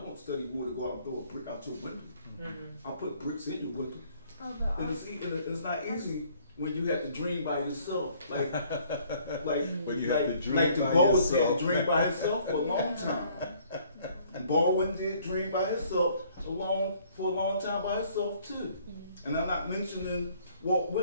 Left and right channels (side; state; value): both; inverted; correlation -0.60